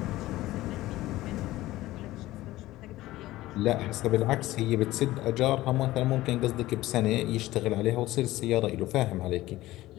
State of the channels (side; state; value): right; quieter; 16.8 dB